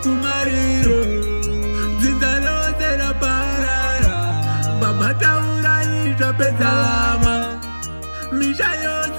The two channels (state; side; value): inverted; both; correlation -1.00